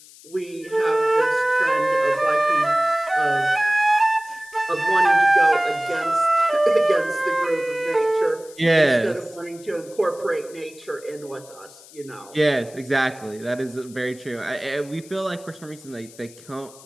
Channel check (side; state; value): left; noise; hiss, 22 dB below the sound